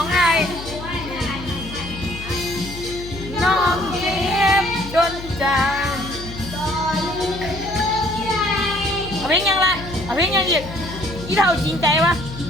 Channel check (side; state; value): left; noise; hum, 12 dB below the sound